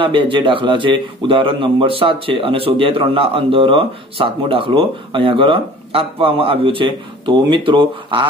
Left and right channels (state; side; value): normal; both; correlation 0.46